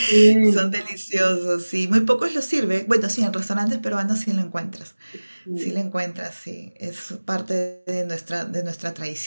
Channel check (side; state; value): both; inverted; correlation -1.00